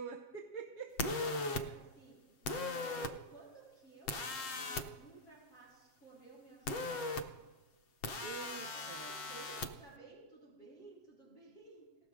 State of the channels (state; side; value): late; right; 7.6 ms